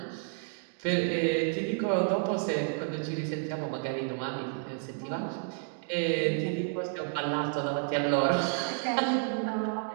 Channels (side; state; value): left; silent; 57 dB below the other